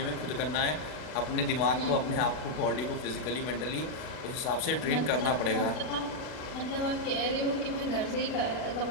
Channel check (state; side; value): late; right; 40 ms